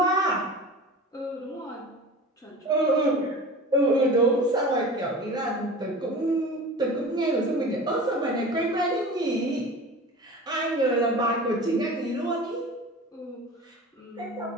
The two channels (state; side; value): normal; both; correlation 0.36